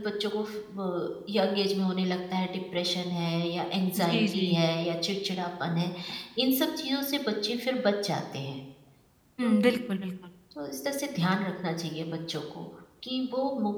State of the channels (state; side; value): identical; both; correlation 1.00